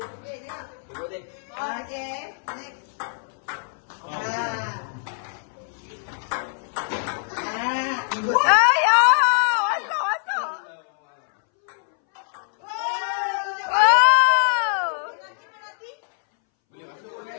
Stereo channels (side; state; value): right; silent; 63 dB below the other